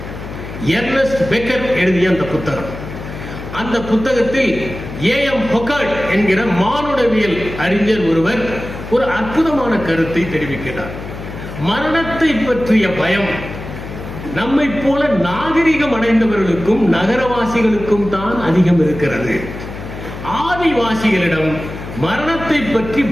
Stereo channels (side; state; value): left; noise; hum, 10 dB below the sound